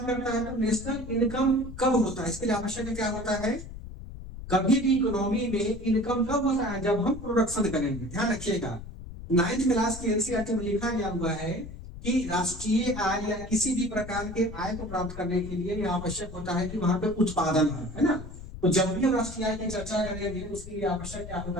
करता है, तो नेशनल इनकम कब होता है, इसके लिए आवश्यक क्या होता है। कभी भी इकोनॉमी में इनकम कब होता है, जब हम प्रोडक्शन करेंगे। ध्यान रखिएगा, 9th क्लास के एनसीईआरटी में लिखा गया हुआ है कि राष्ट्रीय आय या किसी भी प्रकार के आय को प्राप्त करने के लिए यह आवश्यक होता है कि वहां पे उत्पादन है ना। तो जब भी हम राष्ट्रीय आय की चर्चा करेंगे, उसके लिए आवश्यक क्या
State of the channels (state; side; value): noise; left; rumble, 12 dB below the sound